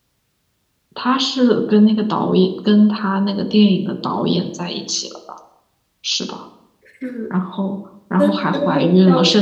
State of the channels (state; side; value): identical; both; correlation 1.00